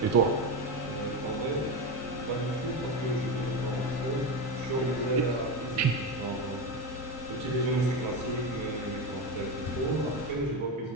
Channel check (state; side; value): normal; both; correlation 0.16